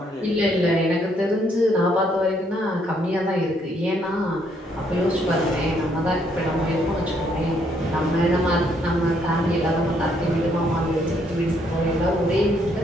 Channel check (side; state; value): both; normal; correlation 0.70